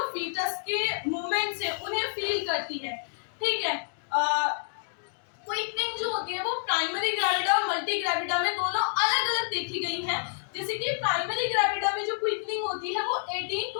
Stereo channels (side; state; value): right; silent; digital silence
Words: फीटस के मूवमेंट्स है उन्हें फील करती है। ठीक है, क्विकनिंग जो होती है वो प्राइमरी ग्रेविडा और मल्टी ग्रेविडा में दोनों अलग अलग देखी गई है। जैसे कि प्राइमरी ग्रेविडा में जो क्विकनिंग होती है वो 18